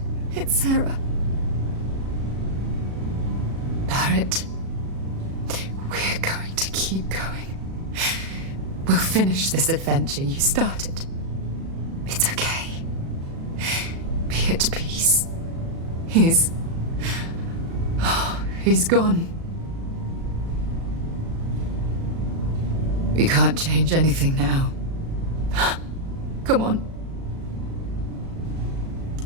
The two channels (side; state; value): left; late; 37 ms